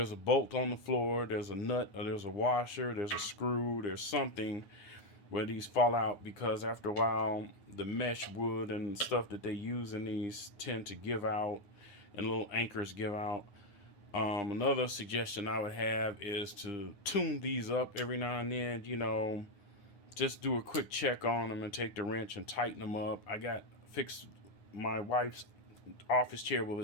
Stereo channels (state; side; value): late; right; 9.4 ms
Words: a bolt on the floor, there's a nut, or there's a washer, there's a screw, there's something where these fall out because after a while the mesh wood and stuff that they use in these tend to give out and little anchors give out. Another suggestion I would have is to tune these up every now and then, you know, just do a quick check on them and take the wrench and tighten them up. I got fixed my wife's office chair with